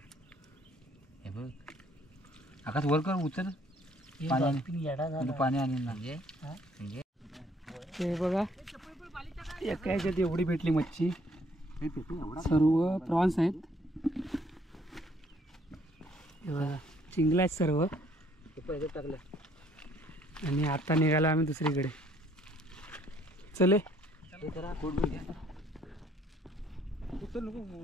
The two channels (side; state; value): both; normal; correlation 0.64